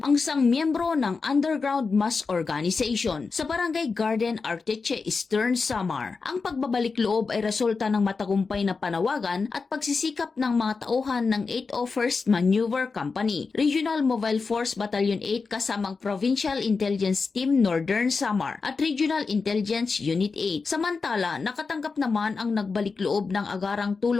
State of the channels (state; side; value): quieter; right; 4.6 dB